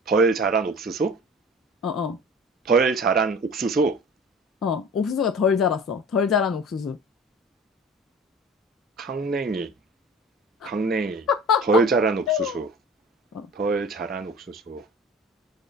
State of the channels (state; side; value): normal; both; correlation 0.40